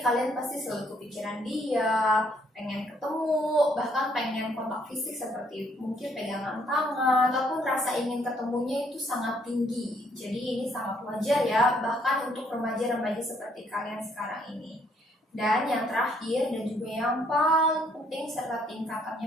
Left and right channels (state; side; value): normal; both; correlation 0.68